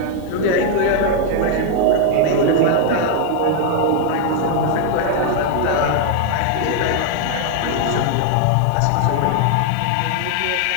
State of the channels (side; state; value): both; different; correlation 0.00